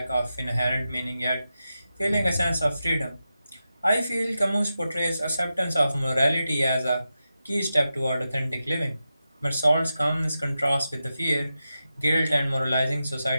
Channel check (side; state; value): both; inverted; correlation -0.90